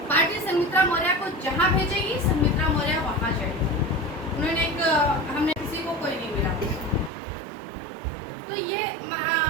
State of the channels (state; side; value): drops out; left; at 7.1 s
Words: पार्टी संघमित्रा मौर्य को जहां भेजेगी संघमित्रा मौर्य वहां जाएगी। उन्होंने हमने किसी को कोई नहीं मिला। तो ये